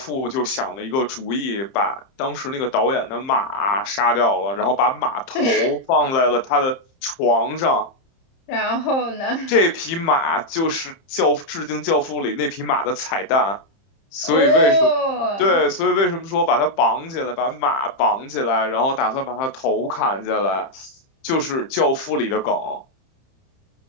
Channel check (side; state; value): right; late; 30 ms